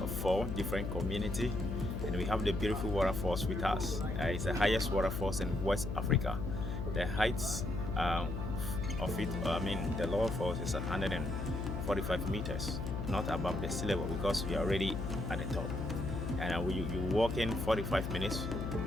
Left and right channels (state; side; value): noise; left; hum, 3 dB below the sound